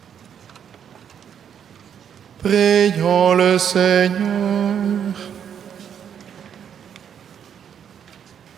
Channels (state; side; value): quieter; left; 8.4 dB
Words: Prions le Seigneur.